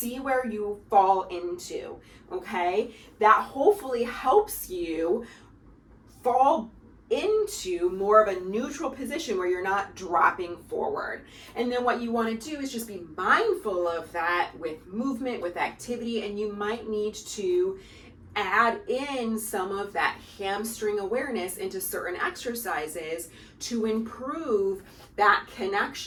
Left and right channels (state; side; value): identical; both; correlation 1.00